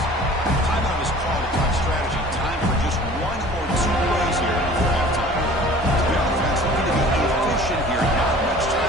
Timeout is called to talk strategy. Time for just 1 or 2 plays here before halftime. The offense looking to be efficient here. Not much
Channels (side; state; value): both; normal; correlation 0.46